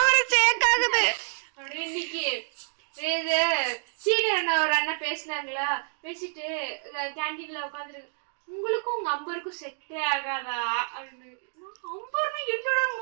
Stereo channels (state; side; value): silent; left; digital silence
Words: சேக் ஆகுது. அப்படியே இன்னைக்கு இது சீனியர் அண்ணா ஒரு அண்ணா பேசினாங்களா, பேசிட்டு கேண்டீன்ல உட்காந்துருக்கு, உங்களுக்கும் உங்க அம்பருக்கும் செட்டே ஆகாதா அப்படின்னு. அம்பர்னா என்னோட